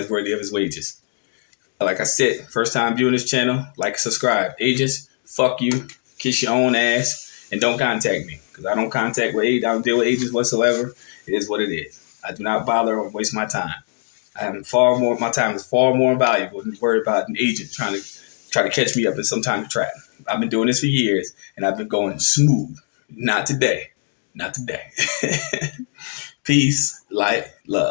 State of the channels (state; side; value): silent; right; digital silence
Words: worthy of his wages. Like I said, first time viewing this channel, like and subscribe. Agents, fuck you, kiss your own ass, and don't contact me. Because I don't deal with agents whatsoever. It is what it is. I do not bother or waste my time. My time is far more valuable than to worry about an agent trying to catch me up in some kind of trap. I've been doing this for years, and I've been going smooth. Not today. Not today. Peace, light,